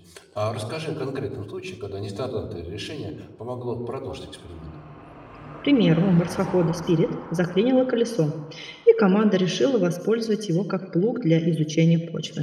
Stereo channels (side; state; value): both; identical; correlation 1.00